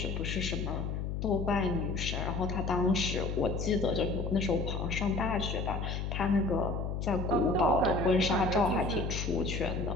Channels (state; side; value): noise; left; hum, 3 dB below the sound